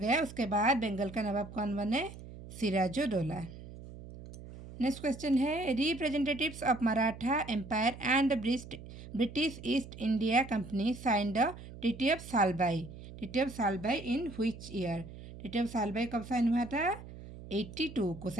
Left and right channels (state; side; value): noise; right; hum, 14 dB below the sound